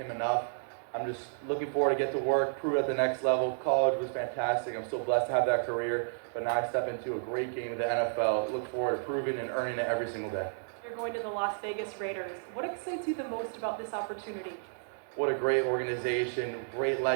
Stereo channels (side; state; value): left; silent; digital silence